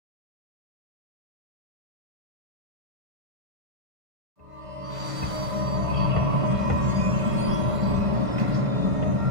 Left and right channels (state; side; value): late; left; 1.5 ms